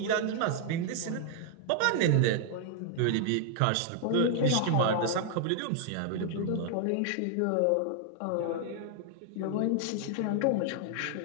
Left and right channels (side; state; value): both; different; correlation 0.00